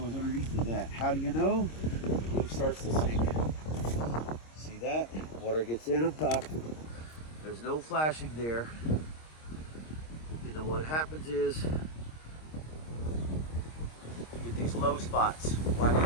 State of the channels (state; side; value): late; right; 26 ms